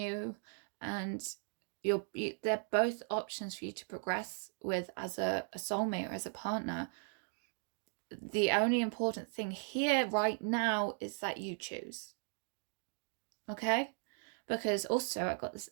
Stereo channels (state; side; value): silent; left; 53 dB below the other